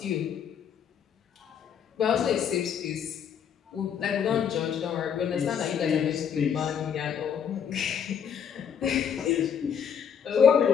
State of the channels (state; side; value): quieter; right; 7.9 dB